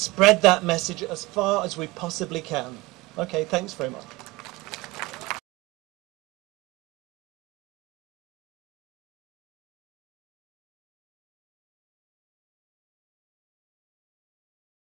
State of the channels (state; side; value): quieter; left; 21.6 dB